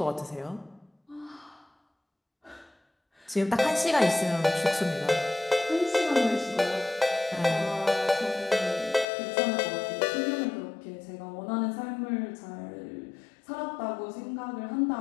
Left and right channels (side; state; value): right; drops out; at 9.1 s